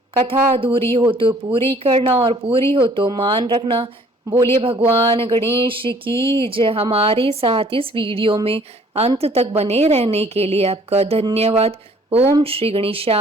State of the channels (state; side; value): normal; both; correlation 0.57